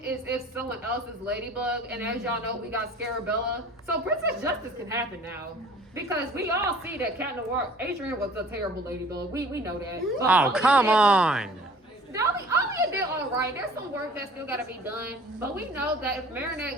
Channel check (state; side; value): normal; both; correlation 0.49